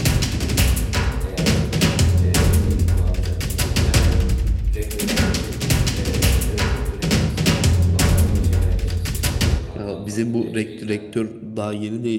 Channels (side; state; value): both; identical; correlation 1.00